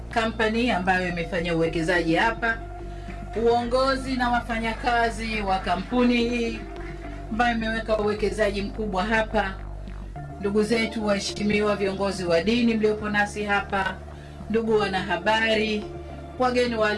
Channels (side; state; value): both; identical; correlation 1.00